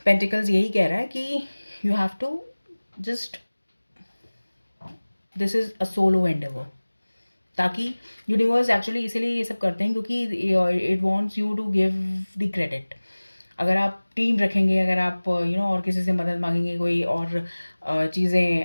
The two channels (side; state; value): both; inverted; correlation -1.00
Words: पेंटिकल्स यही कह रहा है कि you have to just this is a solo endeavour, ताकि यूनिवर्स एक्चुअली इसीलिए ये सब करते हैं क्योंकि it wants you to give the credit. अगर आप टीम रखेंगे, अगर आप और किसी से मदद मांगेंगे, कोई और